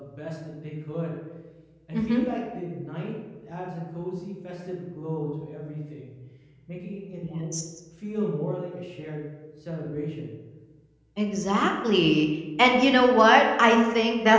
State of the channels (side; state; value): both; identical; correlation 1.00